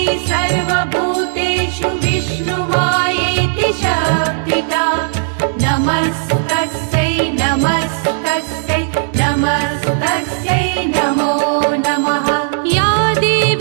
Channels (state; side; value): silent; left; digital silence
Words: सर्वभूतेषु विष्णुमायेति शब्दिता नमस्तस्यै नमस्तस्यै नमस्तस्यै नमो नमः। या